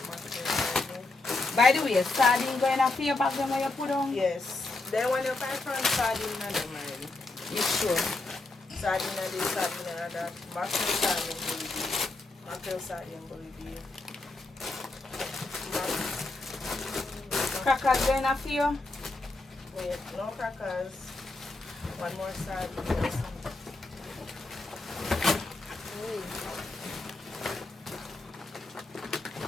mustard. By the way, sardine going up here back then where you put on? Yes. Then when you find from sardine and them already. You sure? Sardine and this, sardine and that. Mackerel sardine bully beef. Mackerel sardine bully beef. Crackers going up here? Wait, no crackers. One more sardine.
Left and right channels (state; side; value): quieter; right; 3.2 dB